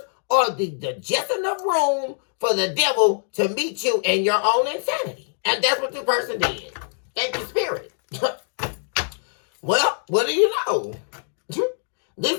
are the just enough room for the devil to meet you in your own insanity. And that's what the person did. Thank you, Spirit. Well, what do you know?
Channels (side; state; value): right; silent; digital silence